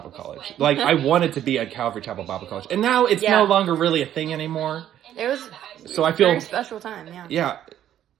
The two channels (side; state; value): left; quieter; 11.2 dB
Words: College. Like, I wanted to be at Calvary Chapel Bible College. And now it's Yeah. no longer really a thing anymore. It was So I a feel... very special time, yeah. Yeah.